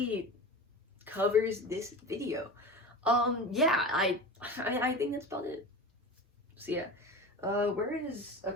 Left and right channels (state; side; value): normal; both; correlation 0.31